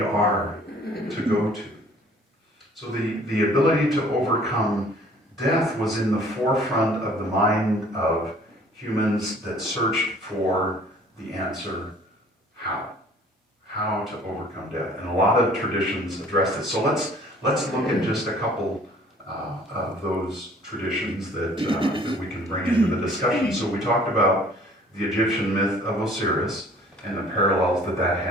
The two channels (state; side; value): normal; both; correlation 0.54